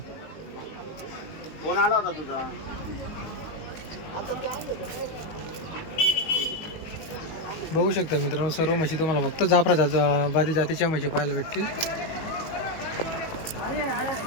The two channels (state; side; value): late; right; 19 ms